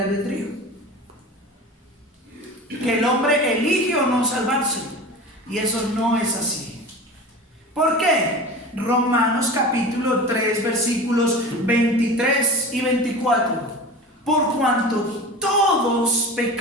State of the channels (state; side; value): normal; both; correlation 0.33